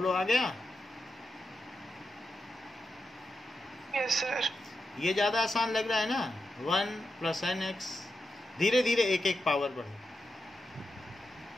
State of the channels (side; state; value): both; normal; correlation 0.88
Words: आ गया? Yes, sir. ये ज़्यादा आसान लग रहा है ना, 1 + nx, धीरे धीरे एक एक पावर बढ़े।